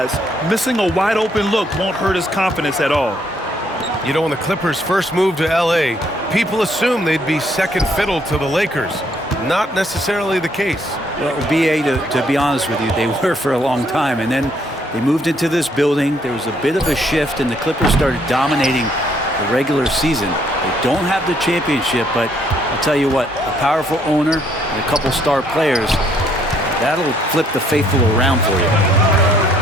missing a wide-open look won't hurt his confidence at all. You know, when the Clippers first moved to L.A., people assumed they'd be second fiddle to the Lakers. Not necessarily the case. Well, B.A., to be honest with you, they were for a long time. And then they moved into this building. There was a bit of a shift, and the Clippers started dominating the regular season. They don't have the championship, but I'll tell you what, a powerful owner and a couple star players, that'll flip the faithful around for you.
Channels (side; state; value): both; normal; correlation 0.68